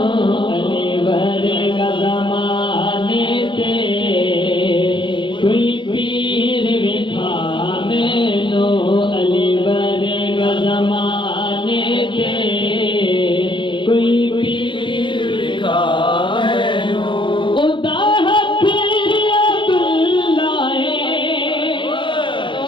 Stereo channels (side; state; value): right; late; 0.24 ms